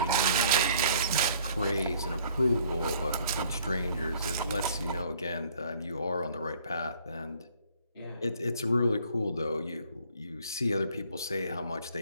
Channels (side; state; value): both; inverted; correlation -0.58